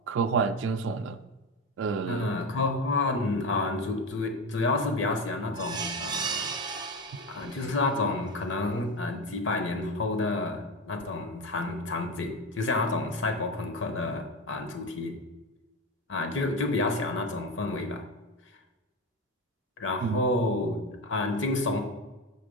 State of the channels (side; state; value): both; normal; correlation 0.19